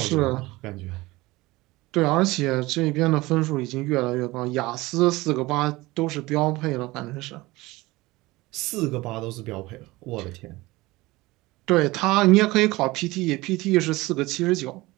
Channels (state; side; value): quieter; left; 20.5 dB